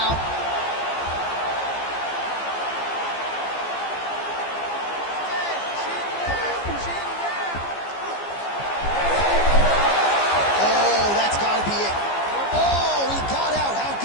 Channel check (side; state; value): right; late; 15 ms